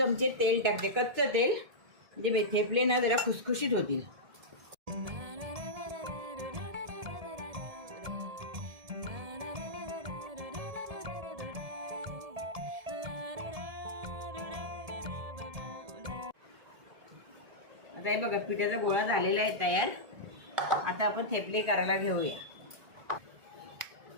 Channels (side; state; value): left; late; 1.7 ms